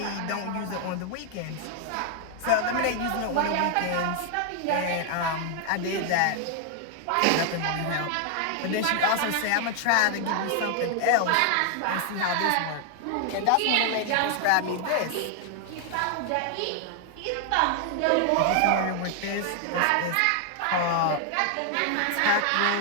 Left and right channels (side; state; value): both; different; correlation 0.00